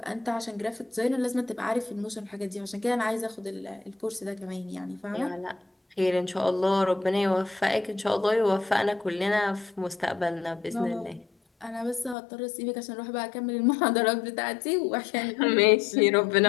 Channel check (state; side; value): drops out; right; at 12.2 s